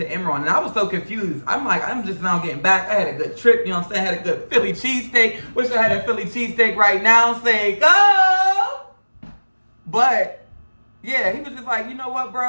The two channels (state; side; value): inverted; both; correlation -1.00